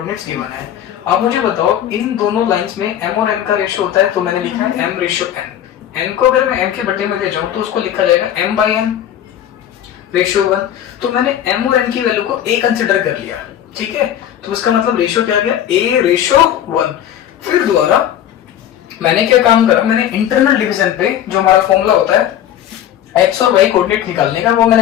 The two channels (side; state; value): right; quieter; 10.8 dB